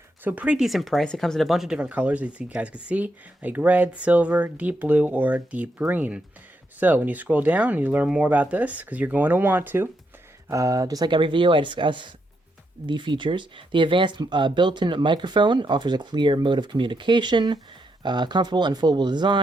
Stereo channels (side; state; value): both; normal; correlation 0.80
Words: So pretty decent price. It comes in a bunch of different colors, as you guys can see, like red, silver, deep blue, or deep green. So when you scroll down and you learn more about this, because you're going to want to, just like every video, I discuss the features. The advanced built-in microphone offers a clear mode of communication, comfortable and foldable